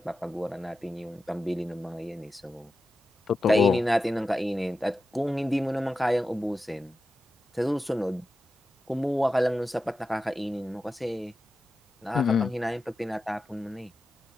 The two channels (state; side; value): normal; both; correlation 0.92